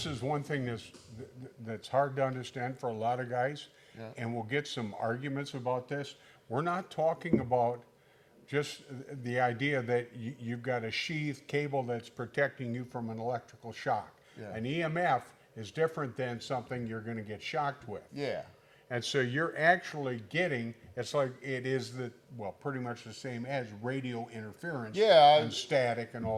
is one thing that's hard to understand for a lot of guys, and we'll get some arguments about this. We're not talking about just the idea that you've got a sheath cable that's protecting you from an electrical shock. Yeah. An EMF is different than something you're going to get shocked with. Yeah. And so you're actually getting, it's like it is pretty much the same as radio interference and static and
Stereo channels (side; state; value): both; identical; correlation 1.00